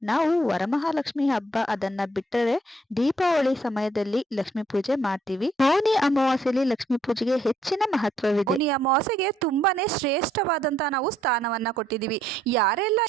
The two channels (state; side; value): normal; both; correlation 0.69